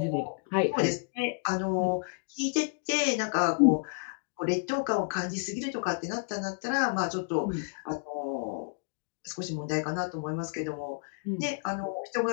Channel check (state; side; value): silent; right; digital silence